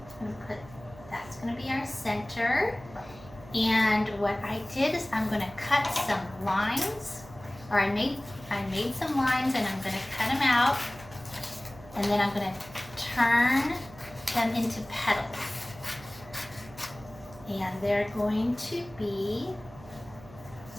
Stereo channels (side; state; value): right; noise; hum, 19 dB below the sound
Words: I'm going to put, that's going to be our center. And what I did is I'm going to cut some lines, or I made some lines and I'm going to cut them out, and then I'm going to turn them into petals. And they're going to be